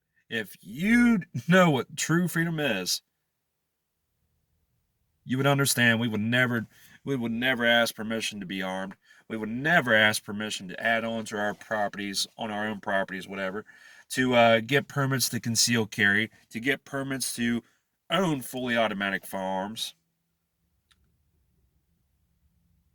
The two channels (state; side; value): identical; both; correlation 1.00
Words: if you know what true freedom is, you would understand we would never ask permission to be armed. We would never ask permission to add on to our properties, on our own properties, whatever, to get permits to conceal carry, to get permits to own fully automatic firearms,